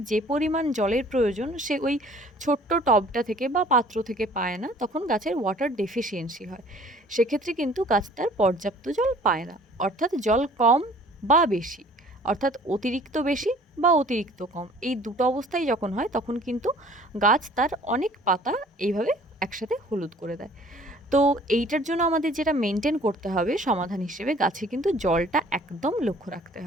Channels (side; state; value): both; normal; correlation 0.52